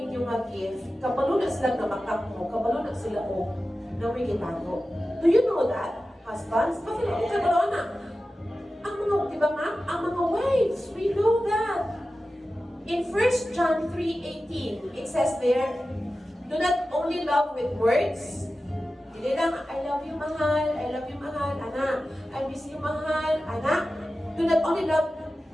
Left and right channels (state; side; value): normal; both; correlation 0.94